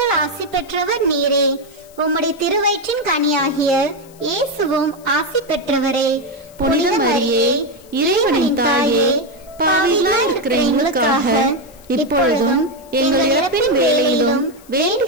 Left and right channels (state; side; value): noise; left; hiss, 26 dB below the sound